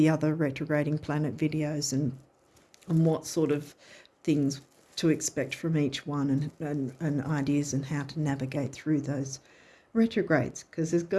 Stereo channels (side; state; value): both; identical; correlation 1.00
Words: retrograding planet videos and what sort of things to expect from each one, and ideas and how to navigate through those retrogrades, because there's